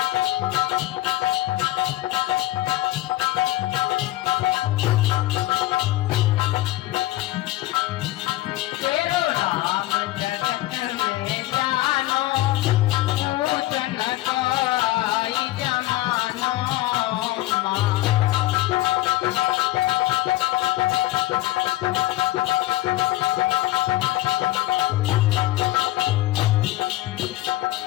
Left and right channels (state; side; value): quieter; right; 16.7 dB